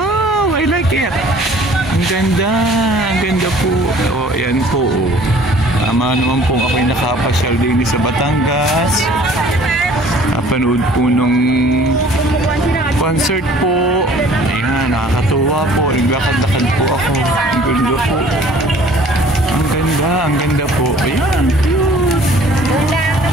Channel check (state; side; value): normal; both; correlation 0.52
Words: I like it. Ang ganda. Ang ganda po. Oh, yan po, oh. Tama naman po ako'y nakapasyal din sa Batangas. Napanood po nung concert po. Ayan, nakakatuwa po. Naglakad-lakad po ako. Ang ganda po. Ang ganda po. Ayan, cute.